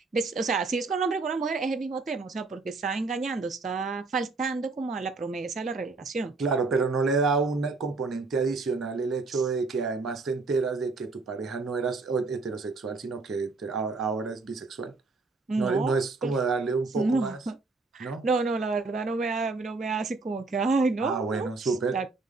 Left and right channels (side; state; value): left; quieter; 3.8 dB